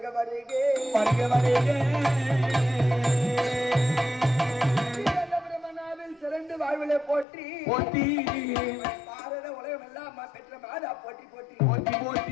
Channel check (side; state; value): right; drops out; at 7.2 s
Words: வருகே பிரமணாவில் சிறந்து வாழ்விலை போற்றி பாரத உலகம் எல்லாம் பெற்ற மாதா போற்றி போற்றி போற்றி